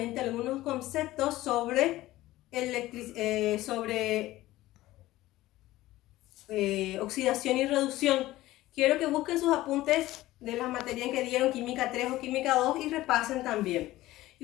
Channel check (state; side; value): quieter; right; 16.7 dB